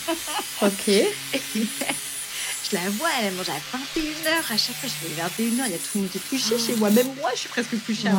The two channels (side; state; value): both; identical; correlation 1.00